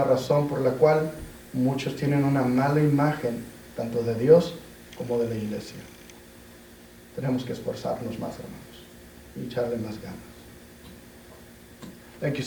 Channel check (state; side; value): identical; both; correlation 1.00